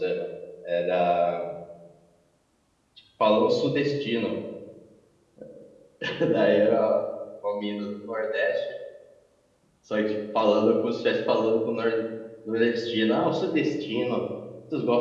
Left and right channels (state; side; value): identical; both; correlation 1.00